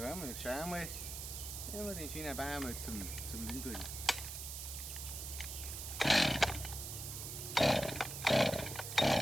und jetzt schauen wir mal, wie wir den schönen Baum mal zum Liegen bringen.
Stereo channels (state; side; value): noise; right; hiss, 7 dB below the sound